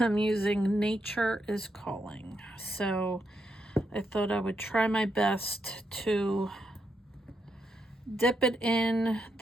using Nature is Calling. So I thought I would try my best to dip it in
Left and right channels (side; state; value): both; normal; correlation 0.81